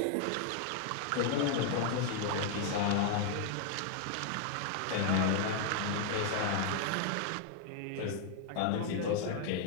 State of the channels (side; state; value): both; different; correlation 0.00